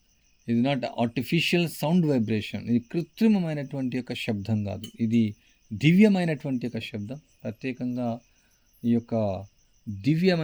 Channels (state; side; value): identical; both; correlation 1.00